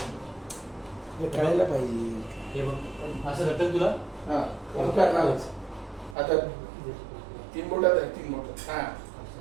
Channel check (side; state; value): left; drops out; at 6.2 s